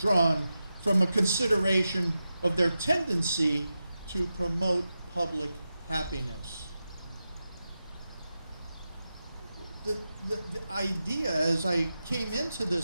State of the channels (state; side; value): inverted; both; correlation -0.91